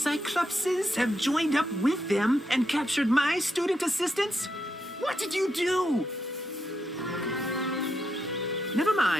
have joined up with them and captured my student assistants? What did you do? Never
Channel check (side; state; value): both; normal; correlation 0.82